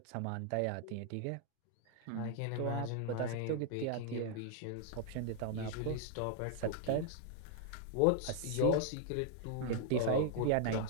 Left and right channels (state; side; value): different; both; correlation 0.00